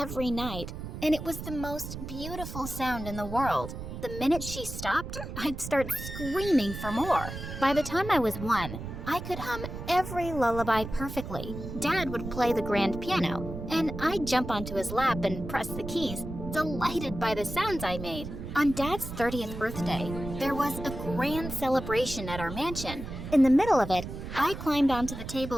night, and it was the most beautiful sound in the world. The minute she stopped, I'd start screaming for more. By the time I was 1, I could hum every lullaby perfectly. Dad would play the grand piano, and I'd jump onto his lap and press the keys, delighted by the sounds I made. On Dad's 30th birthday, there was a grand celebration at our mansion. In the middle of it, I climbed onto the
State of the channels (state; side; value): noise; right; rumble, 8 dB below the sound